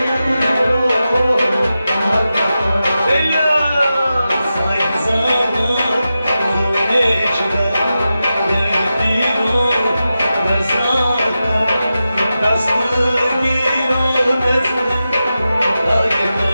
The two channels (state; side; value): inverted; both; correlation -0.91